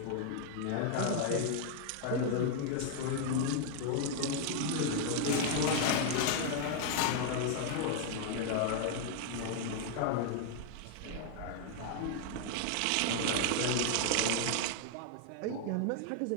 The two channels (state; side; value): different; both; correlation 0.00